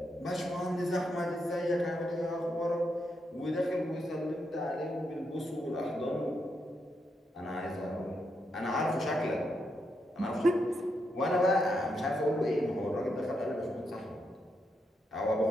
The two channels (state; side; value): normal; both; correlation 0.82